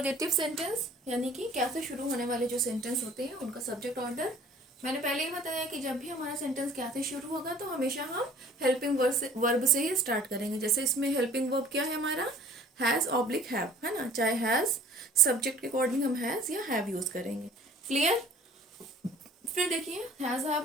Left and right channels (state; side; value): normal; both; correlation 0.51